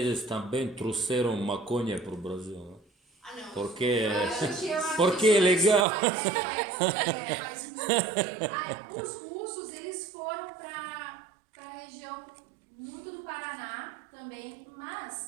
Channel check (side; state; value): left; drops out; at 5.9 s